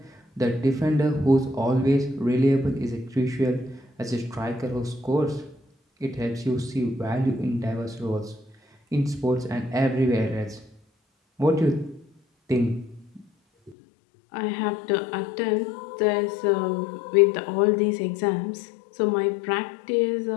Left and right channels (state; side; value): drops out; right; at 13.8 s